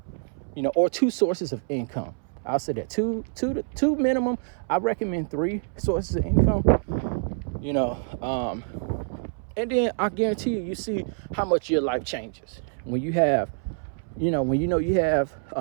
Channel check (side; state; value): left; silent; 61 dB below the other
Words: or 2 sources of income. I'll say that two minimum. I recommend 3 sources of income, and then I guarantee you see how much your life changes when you have, when you have